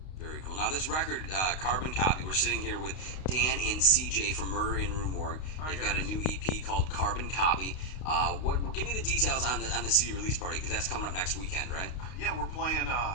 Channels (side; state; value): right; late; 32 ms